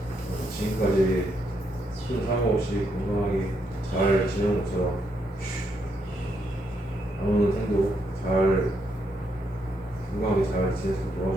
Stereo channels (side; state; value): both; normal; correlation 0.77